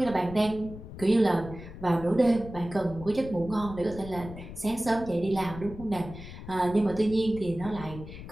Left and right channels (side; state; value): left; noise; rumble, 13 dB below the sound